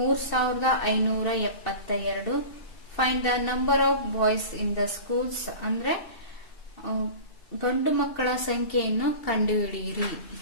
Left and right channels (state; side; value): late; right; 2.7 ms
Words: Find the number of boys in the schools ಅಂದ್ರೆ ಗಂಡು ಮಕ್ಕಳ ಸಂಖ್ಯೆಯನ್ನು ಕಂಡುಹಿಡಿಯಿರಿ.